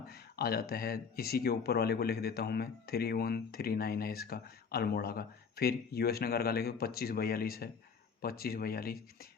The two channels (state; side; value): quieter; right; 5.9 dB